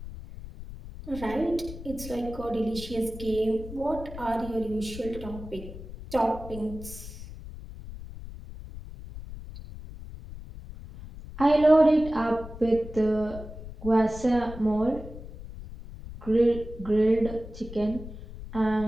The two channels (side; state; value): left; noise; rumble, 12 dB below the sound